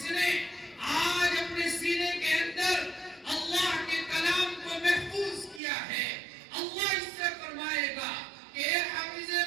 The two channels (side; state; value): left; drops out; at 5.6 s